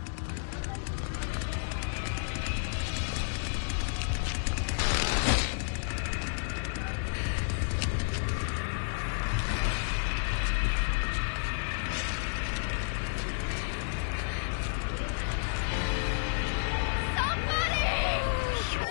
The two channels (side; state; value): right; silent; digital silence